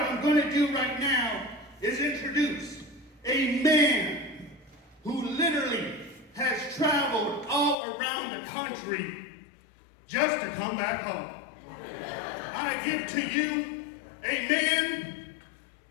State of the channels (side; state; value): right; drops out; at 7.8 s